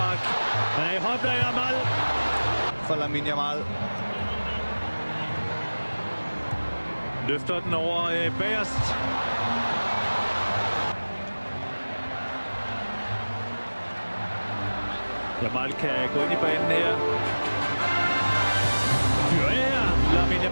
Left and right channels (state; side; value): inverted; both; correlation -1.00